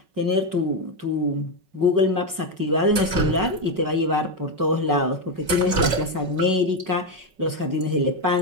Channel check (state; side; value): late; left; 5.4 ms